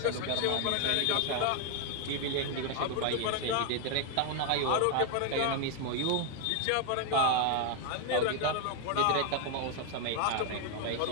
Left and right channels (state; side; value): different; both; correlation 0.00